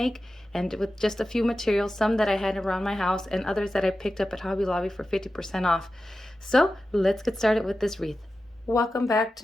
and with just a few materials, some that I had around my house and others that I picked up at Hobby Lobby for 50% off. So let's get started with this wreath. Welcome back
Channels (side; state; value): both; normal; correlation 0.93